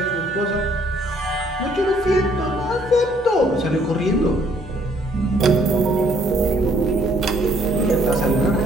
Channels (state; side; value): normal; both; correlation 0.64